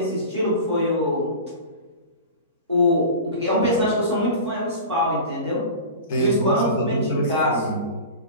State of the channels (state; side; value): inverted; both; correlation -0.33